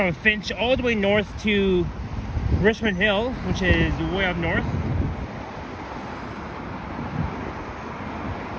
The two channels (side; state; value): both; identical; correlation 1.00